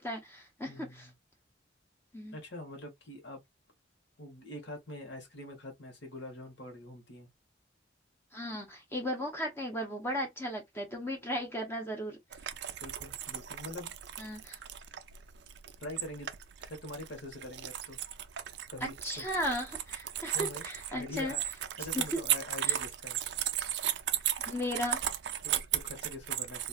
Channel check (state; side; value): quieter; left; 4.2 dB